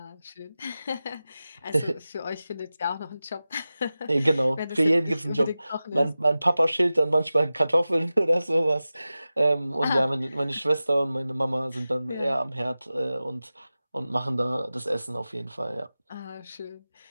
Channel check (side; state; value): both; inverted; correlation -0.95